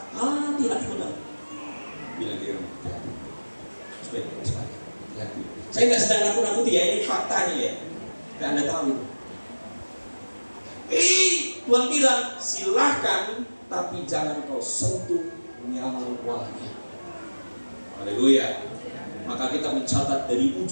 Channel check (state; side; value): inverted; both; correlation -1.00